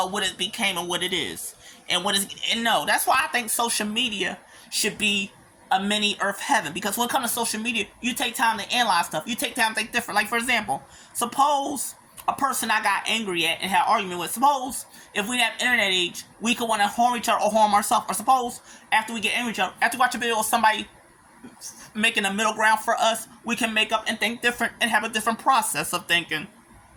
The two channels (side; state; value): both; identical; correlation 1.00